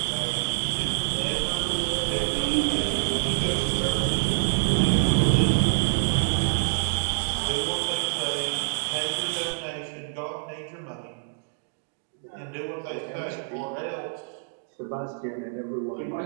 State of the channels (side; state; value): left; silent; digital silence